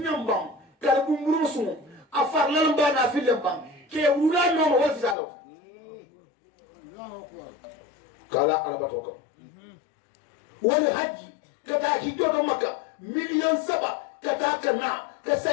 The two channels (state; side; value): drops out; right; at 5.2 s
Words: kalbu murusu afar lalamba na filambam ke wura no wala fisara kala alabatoka wala haji kata hijoto maka million 7 kata kana ka